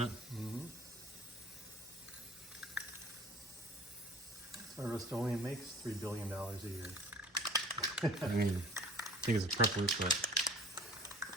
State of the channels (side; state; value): both; normal; correlation 0.47